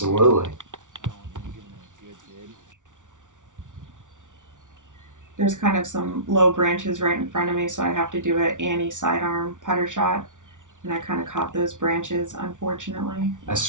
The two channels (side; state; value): left; late; 0.87 ms